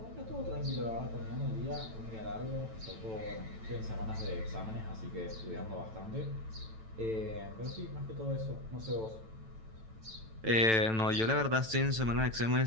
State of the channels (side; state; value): left; late; 9.1 ms